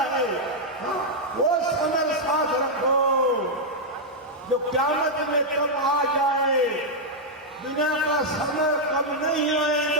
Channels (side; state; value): both; normal; correlation -0.03